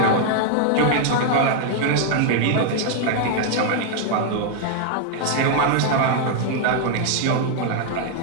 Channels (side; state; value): both; different; correlation 0.00